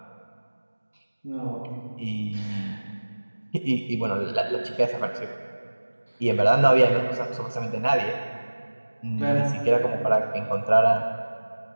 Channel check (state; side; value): inverted; both; correlation -1.00